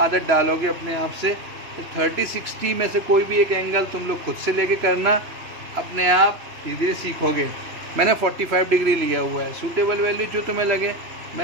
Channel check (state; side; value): late; left; 2.9 ms